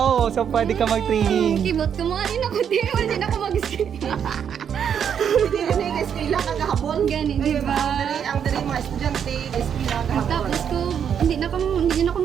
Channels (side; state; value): left; quieter; 8.1 dB